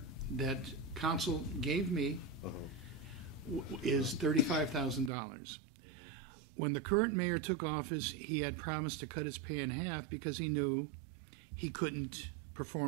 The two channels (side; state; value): left; drops out; at 5.1 s